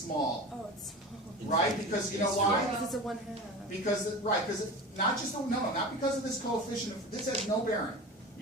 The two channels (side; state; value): both; normal; correlation 0.32